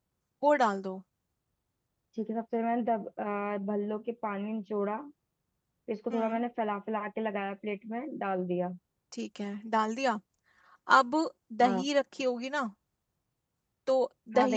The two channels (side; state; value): both; identical; correlation 1.00